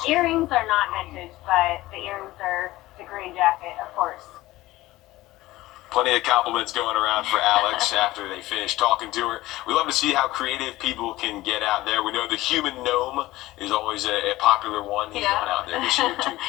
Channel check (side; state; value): right; quieter; 17.5 dB